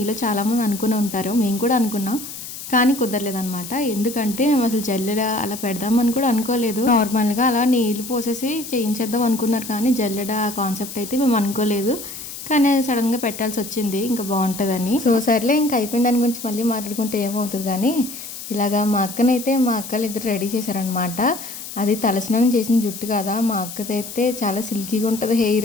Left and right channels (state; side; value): noise; left; hiss, 11 dB below the sound